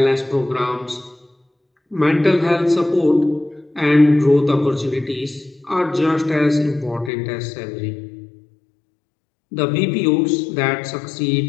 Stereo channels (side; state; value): right; drops out; at 7.1 s